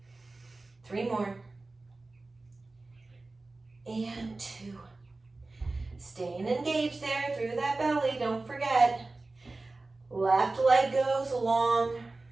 3 more. And 2. Staying engaged there through that belly. Don't forget. Left leg goes long.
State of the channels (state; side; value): quieter; left; 3.3 dB